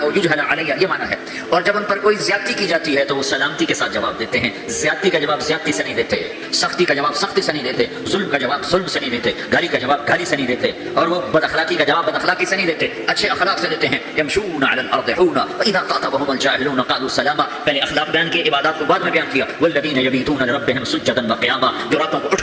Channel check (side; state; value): both; identical; correlation 1.00